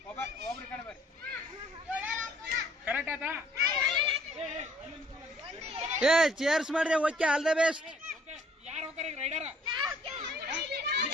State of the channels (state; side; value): normal; both; correlation 0.60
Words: ಏ ಚೇರ್ಸ್ ಮಾಡ್ರಿ. Okay, all the best.